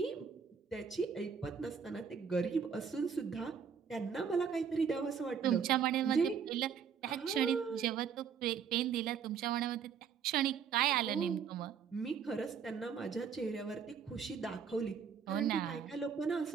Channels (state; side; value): quieter; left; 6.9 dB